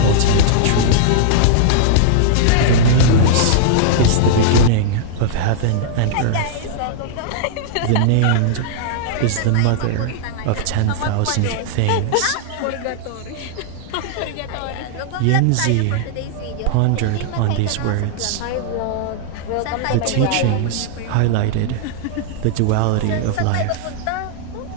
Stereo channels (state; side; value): different; both; correlation -0.01